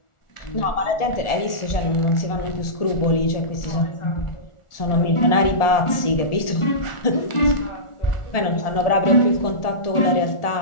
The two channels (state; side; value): late; right; 1.4 ms